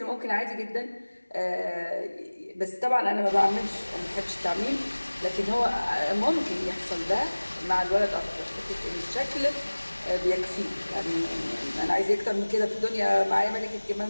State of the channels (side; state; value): both; inverted; correlation -1.00